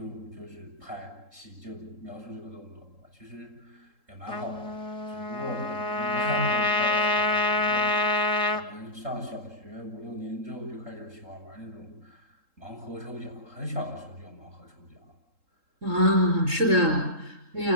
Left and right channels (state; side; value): late; left; 3.8 ms